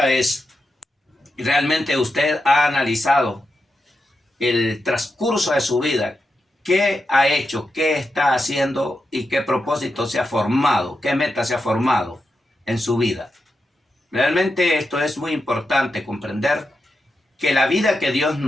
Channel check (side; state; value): both; normal; correlation 0.88